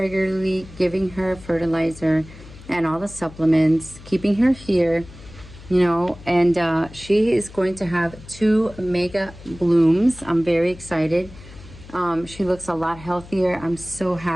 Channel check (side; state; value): left; noise; hum, 18 dB below the sound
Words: giving her fertilizer and all the supplements, keeping her here, you know, and she is going to have 2 mega blooms. I'm very excited. She looks a lot healthier. I'm so